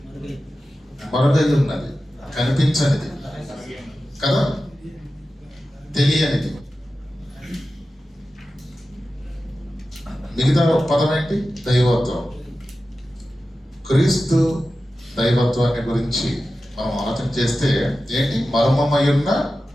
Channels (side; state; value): both; normal; correlation 0.93